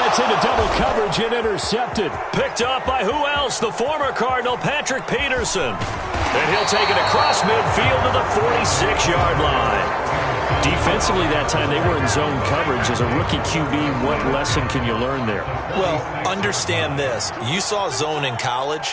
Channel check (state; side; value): identical; both; correlation 1.00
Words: into double coverage and intercepted. Picked up by who else? The former Cardinal, Patrick Peterson. And he'll take it across midfield to the 46-yard line. Defensively that time, they were in zone coverage. As a rookie QB, what lesson can you learn there? Well, understand this. You saw zone in